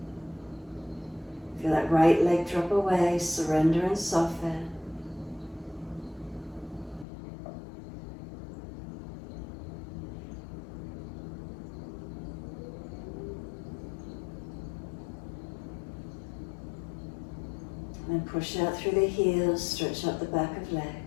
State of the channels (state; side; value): drops out; right; at 7.1 s